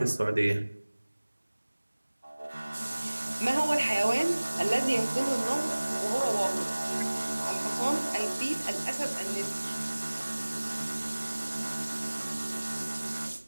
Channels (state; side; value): inverted; both; correlation -1.00